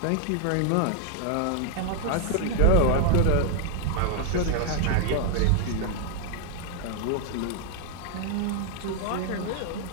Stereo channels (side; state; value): both; different; correlation 0.00